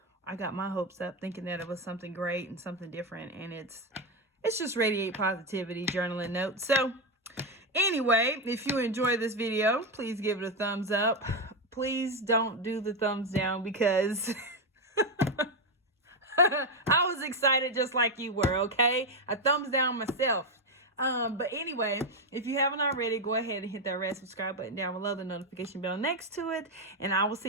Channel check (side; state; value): both; normal; correlation 0.08